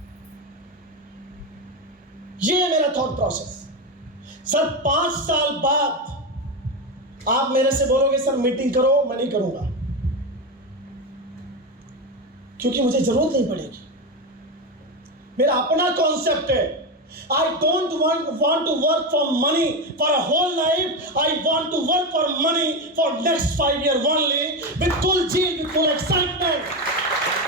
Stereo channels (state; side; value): normal; both; correlation 0.14